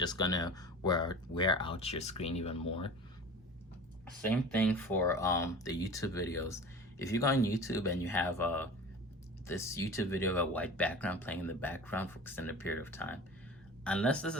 gonna wear out your screen even more. Same thing for the YouTube videos. If you go on YouTube and you have this YouTube video of a white background playing in the background for extended period of time, unless this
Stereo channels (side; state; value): both; normal; correlation 0.37